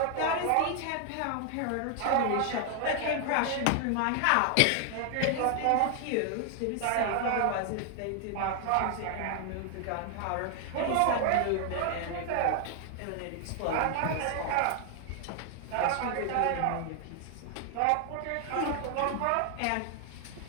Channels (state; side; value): different; both; correlation 0.00